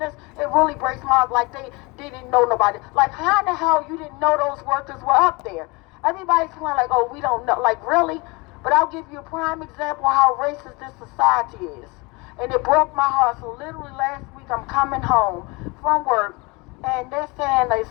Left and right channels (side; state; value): right; quieter; 26.4 dB